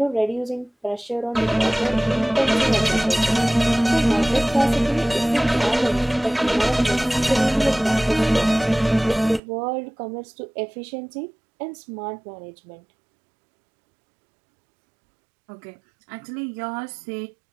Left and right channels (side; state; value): left; drops out; at 9.4 s